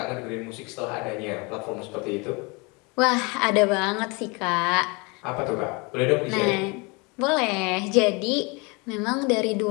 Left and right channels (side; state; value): right; quieter; 28.7 dB